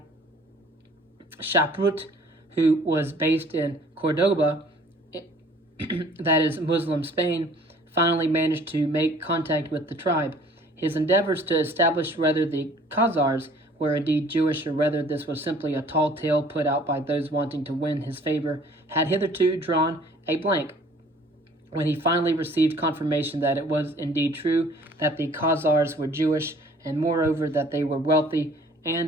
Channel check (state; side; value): normal; both; correlation 0.54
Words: Shaprut, who was based in Cordoba, that is Muslim Spain, finally managed to make contact with the tribe. His endeavors to establish whether the Khazars were indeed Jewish, or whether this was simply a tall tale put out by those wanting to win his favor, had hitherto drawn a blank. When he finally received confirmation that it was indeed true that the Khazars were Jewish, and moreover that they were wealthy